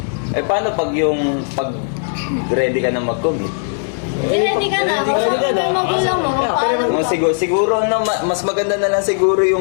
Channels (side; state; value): right; silent; 66 dB below the other